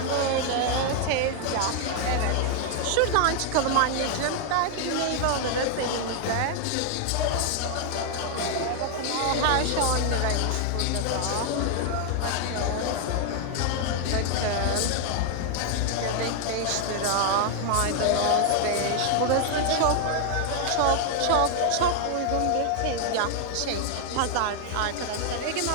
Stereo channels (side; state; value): both; different; correlation 0.00